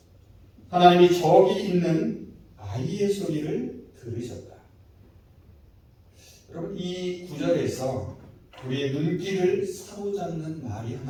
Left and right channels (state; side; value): identical; both; correlation 1.00